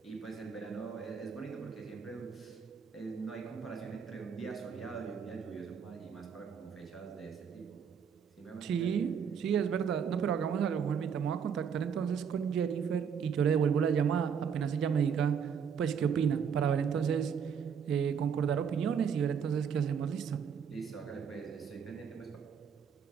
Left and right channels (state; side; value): quieter; left; 7.1 dB